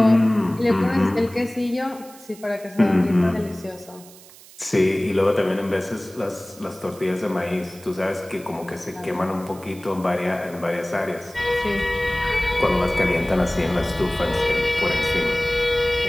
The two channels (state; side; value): noise; right; hiss, 21 dB below the sound